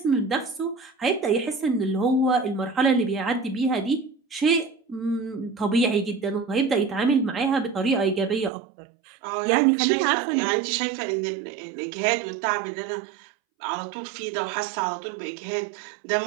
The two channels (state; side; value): drops out; left; at 8.5 s